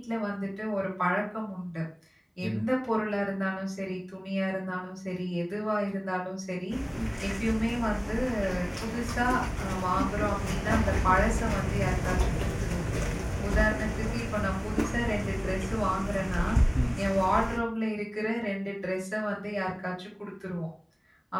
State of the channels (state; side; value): identical; both; correlation 1.00